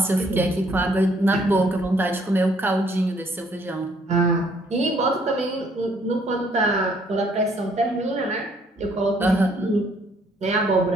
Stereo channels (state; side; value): normal; both; correlation 0.65